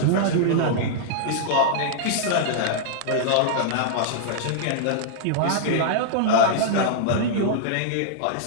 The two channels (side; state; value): both; different; correlation -0.02